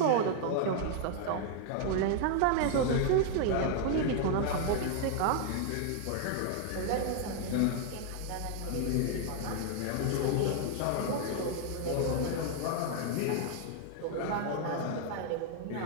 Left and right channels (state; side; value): different; both; correlation 0.00